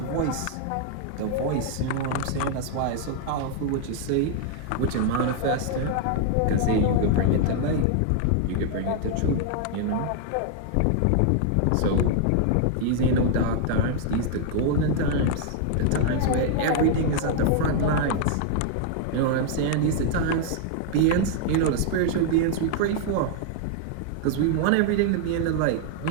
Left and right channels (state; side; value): different; both; correlation 0.00